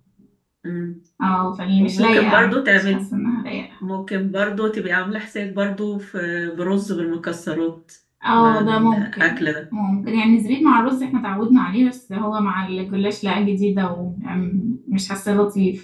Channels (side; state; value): both; identical; correlation 1.00